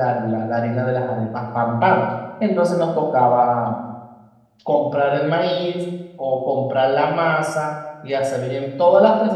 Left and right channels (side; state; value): both; identical; correlation 1.00